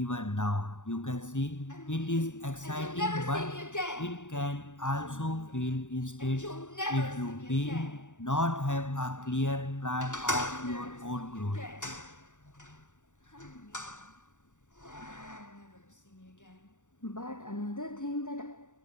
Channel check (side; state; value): right; late; 0.86 ms